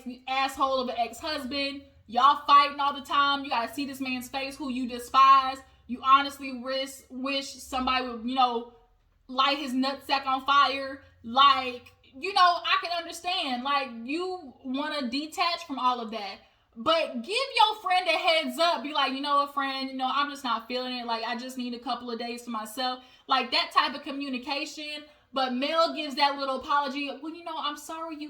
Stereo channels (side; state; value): both; identical; correlation 1.00